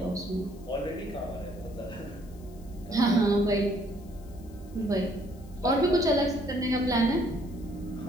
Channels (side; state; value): left; noise; hiss, 27 dB below the sound